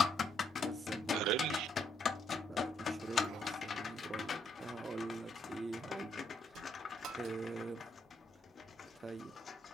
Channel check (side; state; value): both; normal; correlation 0.74